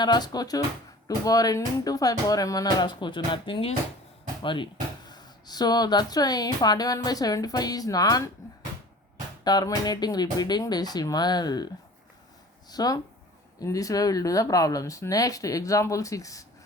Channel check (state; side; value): normal; both; correlation 0.43